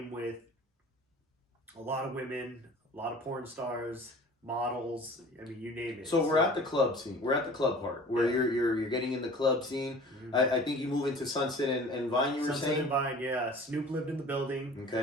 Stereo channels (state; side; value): normal; both; correlation 0.44